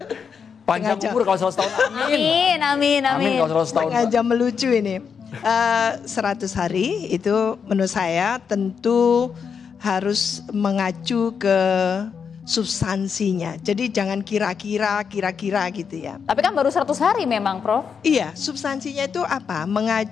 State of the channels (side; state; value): right; quieter; 6.5 dB